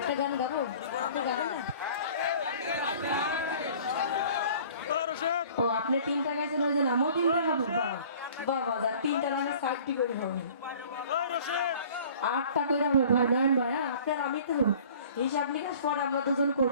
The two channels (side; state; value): both; inverted; correlation -0.49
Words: গান গাবো, ও আপনি তিনটা গাইছেন ওই যে আমিও তিনটা গাবো। বাবা যা তিনটা রান্না সাইডটি করে হবে, 8টা করে হবে ভাই। নয়ন ভাই, আপনার আমি তো হিসাব নিকাশ পরে আমরা দুজন